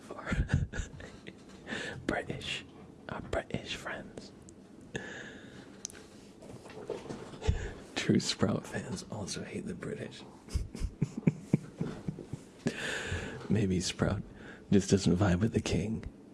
our British friends. True Sprout fans also hate the British. Maybe Sprout just doesn't vibe with the king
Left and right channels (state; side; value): identical; both; correlation 1.00